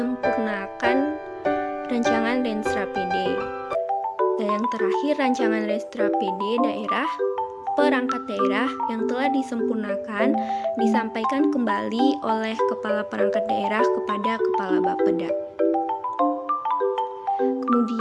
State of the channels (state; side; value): identical; both; correlation 1.00